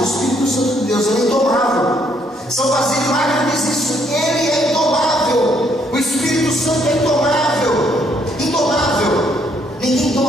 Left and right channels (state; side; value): normal; both; correlation 0.69